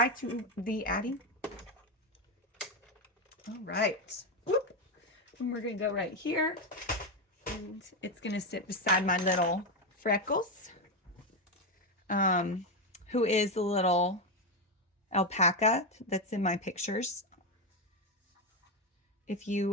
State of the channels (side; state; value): both; normal; correlation 0.09